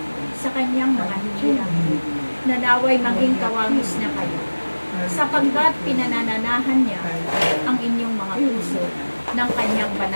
sa kanyang mga hinirang, na naway maging kawangis na kayo, sapagkat pinanananahan niya ang inyong mga puso ng kanyang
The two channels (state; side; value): inverted; both; correlation -1.00